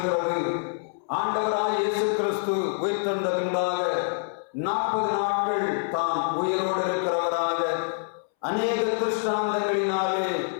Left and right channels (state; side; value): silent; right; 61 dB below the other